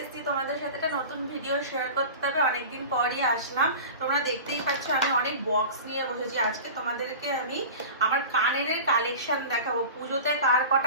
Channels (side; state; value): both; inverted; correlation -0.35